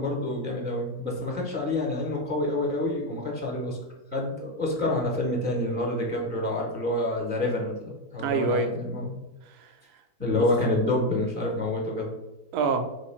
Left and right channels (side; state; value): left; late; 4.0 ms